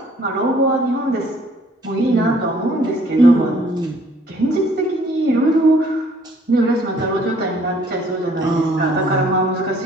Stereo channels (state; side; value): normal; both; correlation 0.59